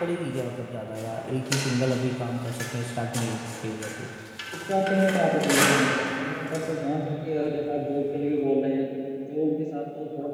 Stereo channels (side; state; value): both; identical; correlation 1.00